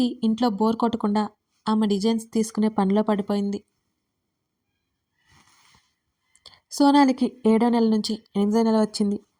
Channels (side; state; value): both; identical; correlation 1.00